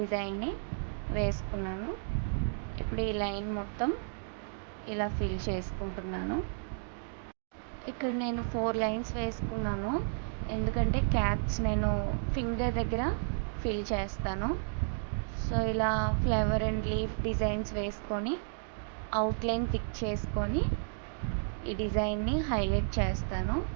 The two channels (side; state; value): left; silent; digital silence